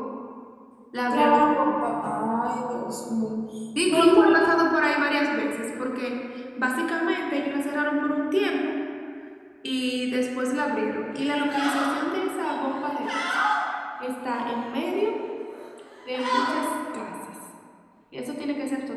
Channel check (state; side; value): identical; both; correlation 1.00